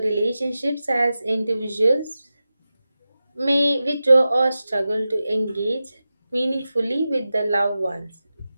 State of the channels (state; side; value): inverted; both; correlation -0.93